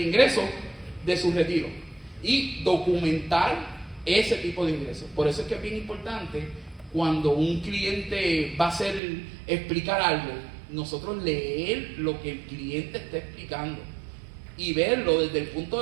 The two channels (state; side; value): drops out; left; at 9.0 s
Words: ingreso de su retiro y documentar ese tipo de ingresos. Por eso es que es bien importante cuando un cliente va a explicar algo, nosotros leer lo que el cliente está explicando y verlo desde el punto